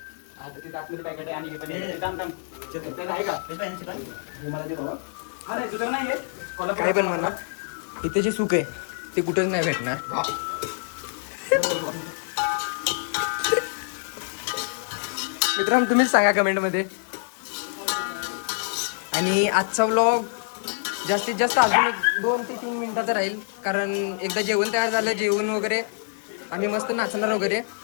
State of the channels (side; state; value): right; silent; 61 dB below the other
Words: काय पण म्हणा, इथे जे सुख आहे ते कुठंच नाही भेटणार. मित्रांनो तुम्हीच सांगा कमेंटमध्ये. आणि आजचा व्लॉग जास्तीत जास्त अजून एक 2 ते 3 मिनिटाचं राहील, कारण एकदा जेवण तयार झालं, जेवण वगैरे आम्ही मस्त नाचणार वगैरे.